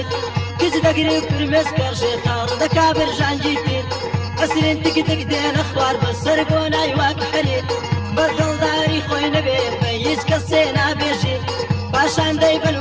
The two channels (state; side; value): identical; both; correlation 1.00